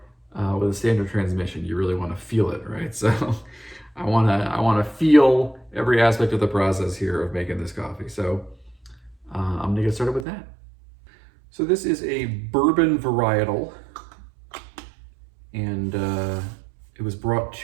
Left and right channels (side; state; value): left; drops out; at 10.2 s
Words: with a standard transmission. You really want to feel it, right? So I wanna feel every aspect of the process here of making this coffee. So I'm gonna get started with that. So this is a bourbon varietal, and it was brought